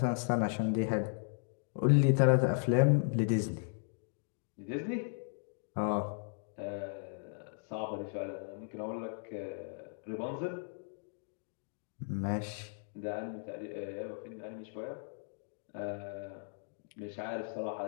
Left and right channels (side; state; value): right; silent; digital silence